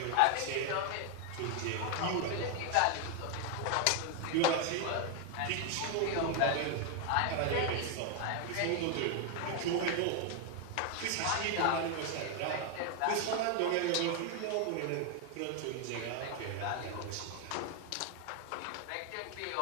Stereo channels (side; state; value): both; different; correlation 0.01